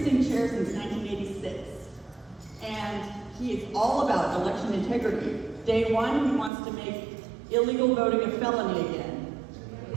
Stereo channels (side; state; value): left; drops out; at 6.5 s